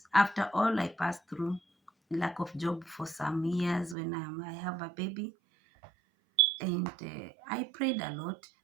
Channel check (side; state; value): left; drops out; at 4.0 s